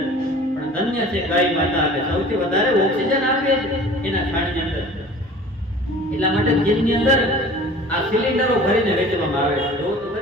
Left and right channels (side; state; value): both; normal; correlation 0.44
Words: પણ ધન્ય છે ગાય માતા, કે સૌથી વધારે ઓક્સિજન આપે છે એના છાણની અંદર. એટલા માટે ચીનની અંદર આ સિલિન્ડરો ભરીને વેચવામાં આવે છે. જો તો